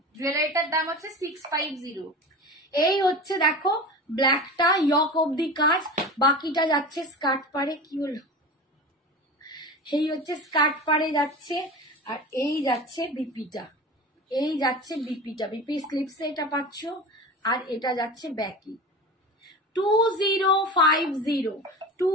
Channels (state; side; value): normal; both; correlation 0.31